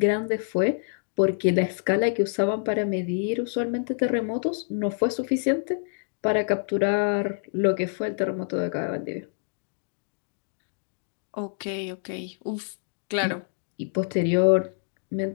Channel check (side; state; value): right; silent; digital silence